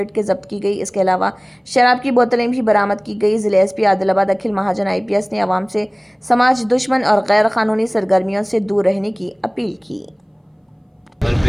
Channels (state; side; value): identical; both; correlation 1.00